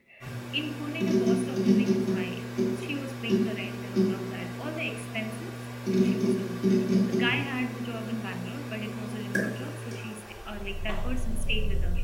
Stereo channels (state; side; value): identical; both; correlation 1.00